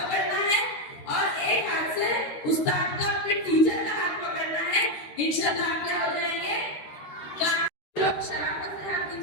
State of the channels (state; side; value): late; right; 13 ms